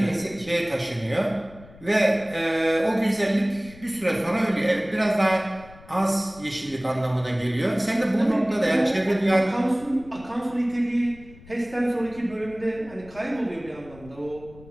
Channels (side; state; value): left; noise; rumble, 21 dB below the sound